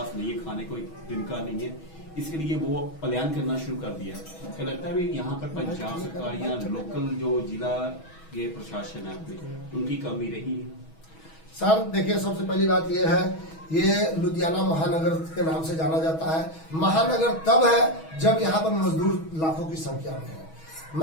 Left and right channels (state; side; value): late; right; 6.2 ms